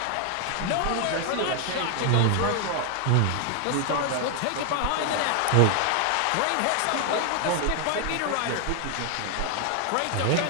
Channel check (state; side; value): different; both; correlation 0.00